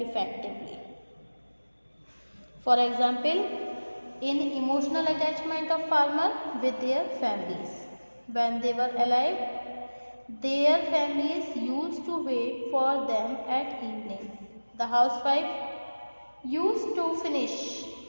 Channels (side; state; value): both; inverted; correlation -1.00